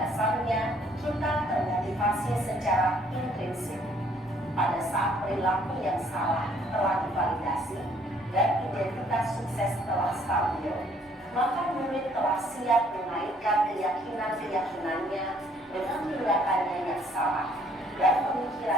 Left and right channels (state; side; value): normal; both; correlation 0.62